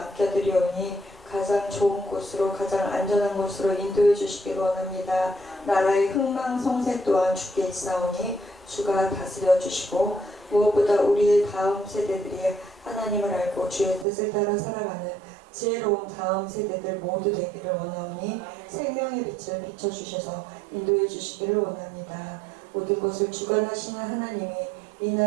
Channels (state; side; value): drops out; left; at 14.1 s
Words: 가장 좋은 곳으로 가장 안전한 곳으로 인도해 주시길 원합니다. 나라의 흥망성쇠 또한 주께 있사오니 주가 다스려 주시고 무엇보다 우리의 다음 세대들이 하나님을 알고 주의 뜻을 따라 살아가는 지혜로운 다음 세대들 모두 되기를 원하오니 생명의 빛을 비춰주셔서 인도해 주시기를 원합니다. 모든 것을 주관하시는 하나님이 이